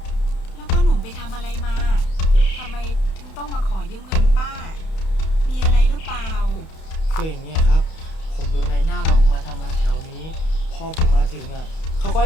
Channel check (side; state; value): right; late; 31 ms